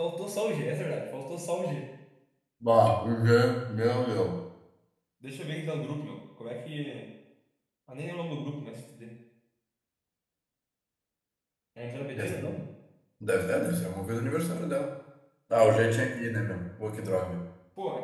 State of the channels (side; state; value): both; identical; correlation 1.00